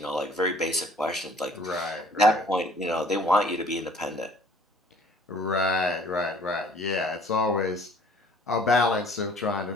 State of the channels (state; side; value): normal; both; correlation 0.54